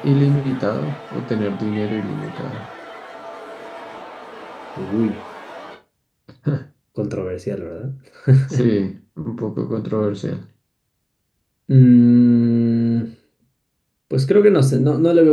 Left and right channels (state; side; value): identical; both; correlation 1.00